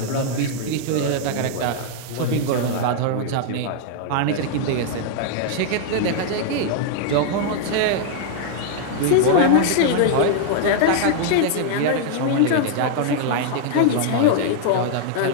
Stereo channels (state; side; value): different; both; correlation -0.01